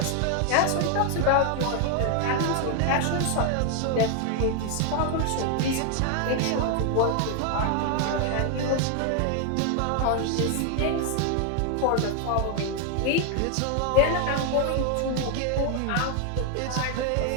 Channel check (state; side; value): different; both; correlation 0.00